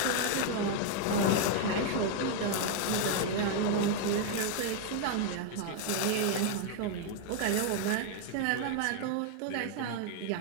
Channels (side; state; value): both; different; correlation 0.00